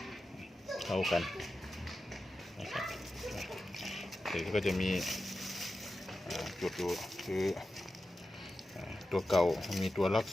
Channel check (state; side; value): normal; both; correlation 0.92